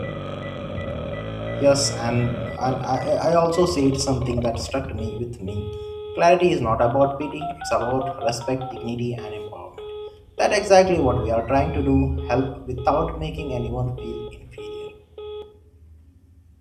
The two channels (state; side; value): identical; both; correlation 1.00